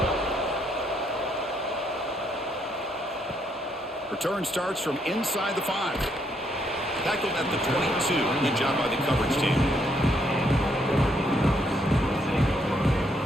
Return starts from inside the 5. Tackled at the 22. Good job by the coverage team.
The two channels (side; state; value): both; normal; correlation 0.73